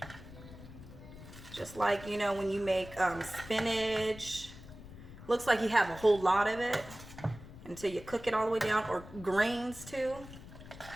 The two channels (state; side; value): noise; left; rumble, 15 dB below the sound